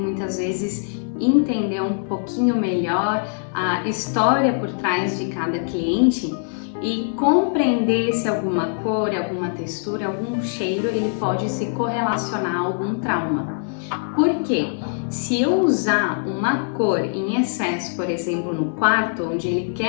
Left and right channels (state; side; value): silent; right; digital silence